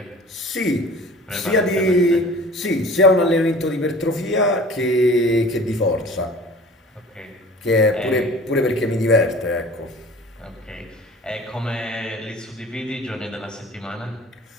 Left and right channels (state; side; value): normal; both; correlation 0.44